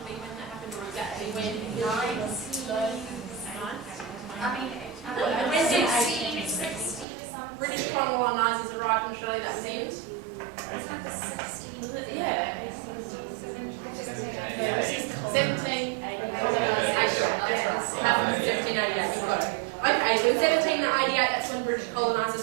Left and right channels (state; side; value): drops out; left; at 7.1 s